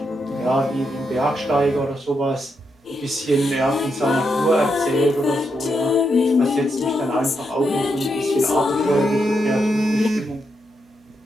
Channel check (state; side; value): normal; both; correlation 0.82